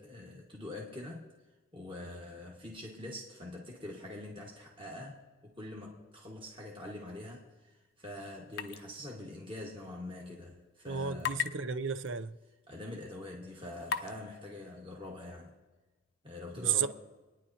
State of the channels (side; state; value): both; normal; correlation 0.18